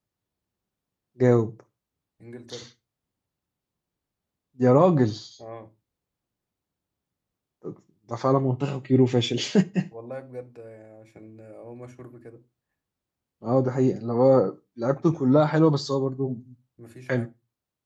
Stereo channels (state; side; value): identical; both; correlation 1.00